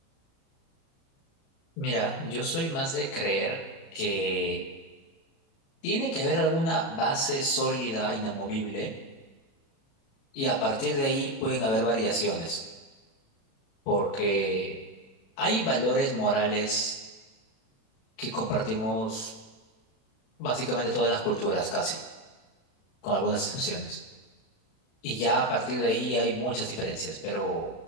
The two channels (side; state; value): right; late; 36 ms